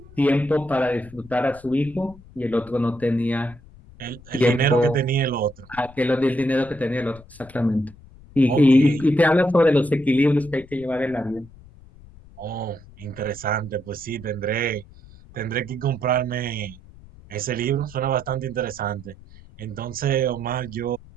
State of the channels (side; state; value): left; noise; rumble, 22 dB below the sound